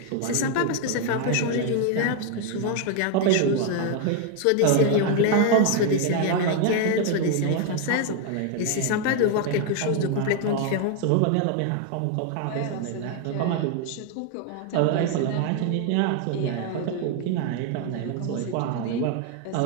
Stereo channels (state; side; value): different; both; correlation 0.01